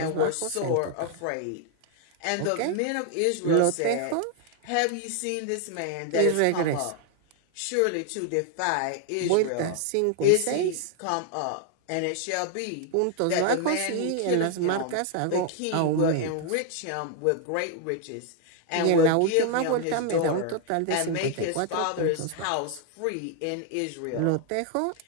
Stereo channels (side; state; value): both; different; correlation 0.00